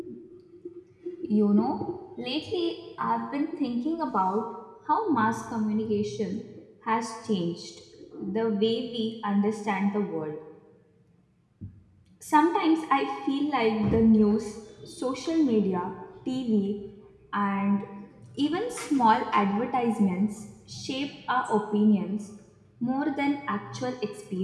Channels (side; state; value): both; identical; correlation 1.00